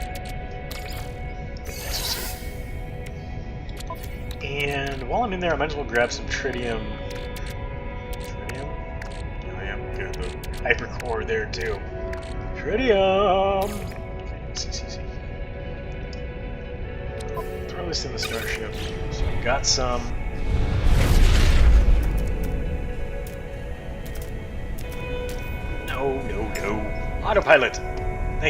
And while I'm in there, I might as well grab some tritium. Tritium? Oh yeah, good. The hypercore there too. Tritium! See. breakfast in the starship. So we got some. No, no, no. Autopilot.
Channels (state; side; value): identical; both; correlation 1.00